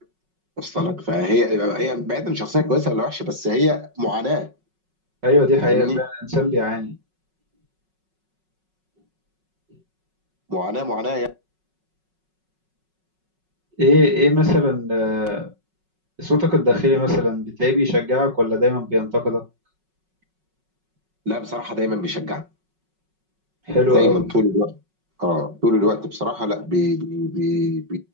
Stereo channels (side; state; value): left; late; 5.4 ms